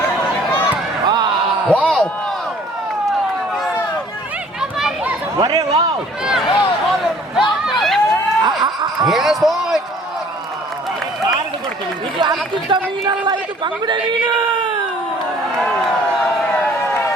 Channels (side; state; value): both; normal; correlation 0.55